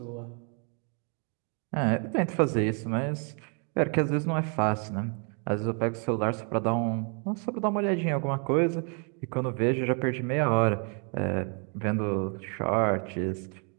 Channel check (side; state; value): left; quieter; 39.5 dB